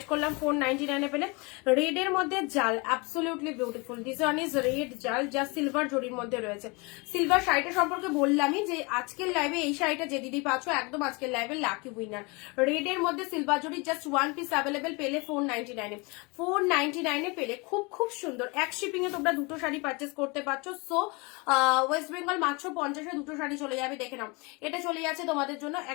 করলাম, 499 পেলে। রেড এর মধ্যে জাল, absolutely beautiful. This one is red জাল, যা সিলভার জরির মধ্যে রয়েছে। সিলভার শাড়িটা সম্পর্কে বললামই যে আজকের লাইভে এই শাড়িটা যে দিদি পাচ্ছ একদম আজকের লাইভে লাকি উইনার। রেড এর মধ্যে সিলভার জরি, জাস্ট 1 পিস অ্যাভেলেবেল পেলে 499 499 পেলে। খুব খুব সুন্দর। এক শিপিং এ তোমরা দুটো শাড়ি পারচেস করতে পারছো। সো ওয়েস্ট বেঙ্গল মাত্র 50-এ দুটো শাড়ি চলে যাবে, দেখে নাও। এটা চলে যাচ্ছে তোমাদের জন্য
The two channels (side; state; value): right; quieter; 28.3 dB